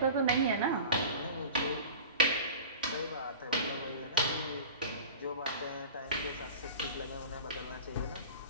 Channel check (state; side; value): inverted; both; correlation -0.37